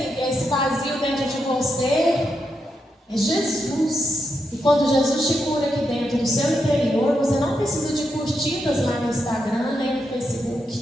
esse vazio dentro de você é Jesus. E quando Jesus te cura aqui dentro do seu interior, você não precisa de curtidas lá no Instagram, nem no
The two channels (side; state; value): both; normal; correlation 0.84